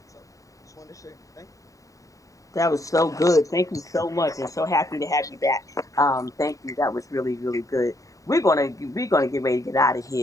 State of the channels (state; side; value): late; right; 0.16 ms